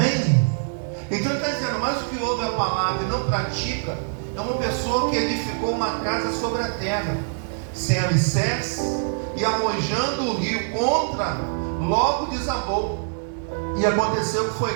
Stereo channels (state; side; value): silent; left; 63 dB below the other